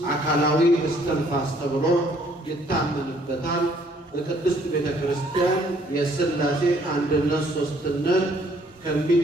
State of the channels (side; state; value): both; normal; correlation 0.63